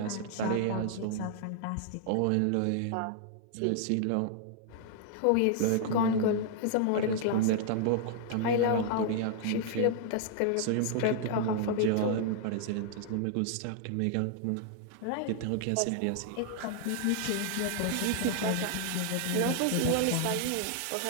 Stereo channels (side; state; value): both; different; correlation -0.01